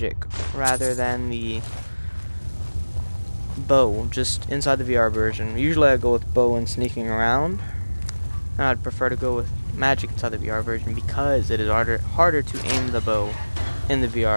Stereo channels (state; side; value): inverted; both; correlation -1.00